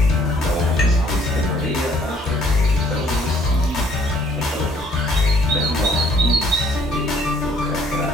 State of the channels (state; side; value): normal; both; correlation 0.61